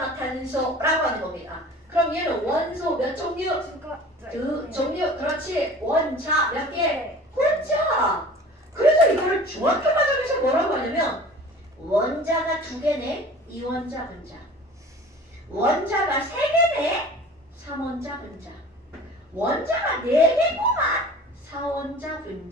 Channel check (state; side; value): normal; both; correlation 0.43